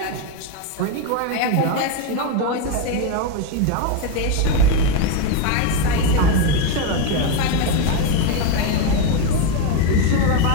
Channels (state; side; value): different; both; correlation 0.03